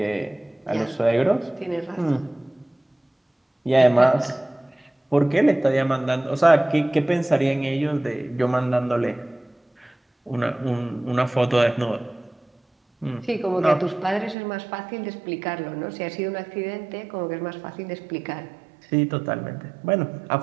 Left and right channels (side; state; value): left; drops out; at 14.4 s